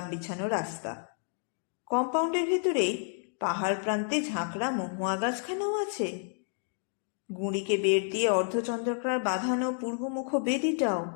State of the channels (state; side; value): silent; right; 58 dB below the other